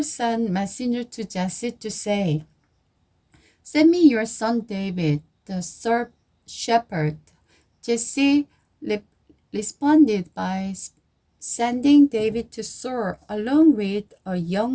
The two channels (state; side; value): identical; both; correlation 1.00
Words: sent messenger to Jesse to say, send me your son David, the shepherd. Jesse responded by sending David to Saul along with a